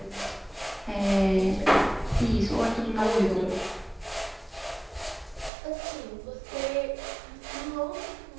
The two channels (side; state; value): left; drops out; at 5.5 s